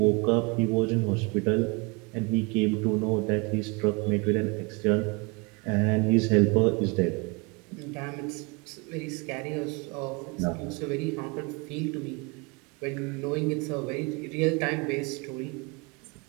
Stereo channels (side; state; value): left; quieter; 29.2 dB